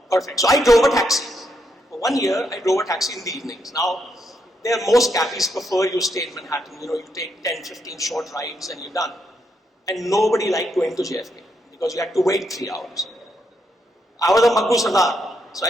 Perfect. So I drove a taxi. For 1 year, I drove a taxi in the evenings. Now, most cabbies prefer you stay in Manhattan. You take 10, 15 short rides and you're done. And nobody liked going to JFK because you had to wait 3 hours. I was a Maggu Sardar. So I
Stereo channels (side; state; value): both; normal; correlation 0.79